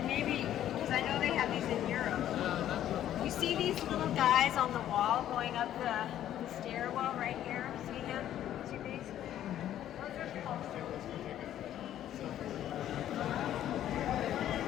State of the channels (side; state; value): right; quieter; 11.7 dB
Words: maybe because I know they have these in Europe. You see these little guys on the wall going up the stairwell right here? See him? See these? Those are sculptures.